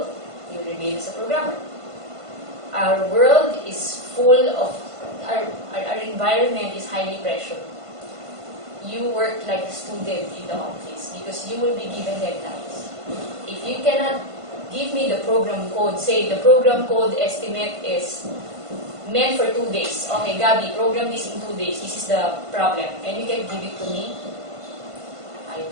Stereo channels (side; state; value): left; late; 1.5 ms